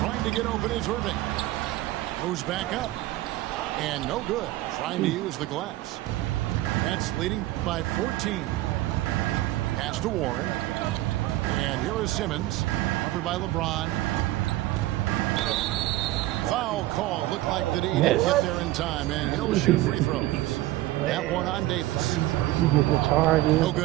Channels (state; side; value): quieter; left; 16.7 dB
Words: to get open is Irving. Moves back up. And no good. Trying to use the glass. Nets leading by 14. Pass to Warren. And here is Simmons. Covered by LeBron. Foul call. Looked like that he didn't get there in time. And he'll shoot free throws. That one on Davis. You get the charges. No